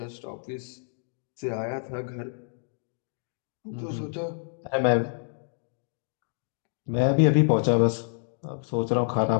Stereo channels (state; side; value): silent; right; digital silence